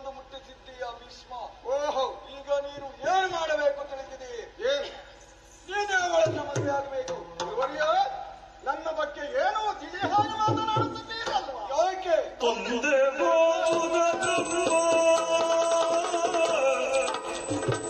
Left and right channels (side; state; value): both; identical; correlation 1.00